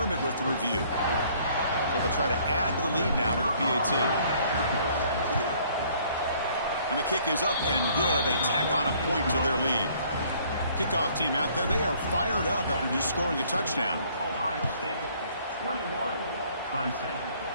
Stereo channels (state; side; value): inverted; both; correlation -0.60